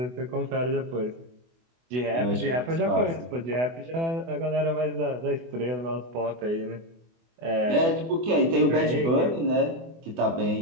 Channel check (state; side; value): late; left; 24 ms